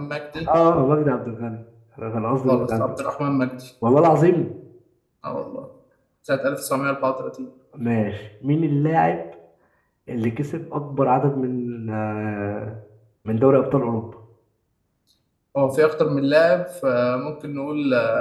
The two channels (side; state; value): both; identical; correlation 1.00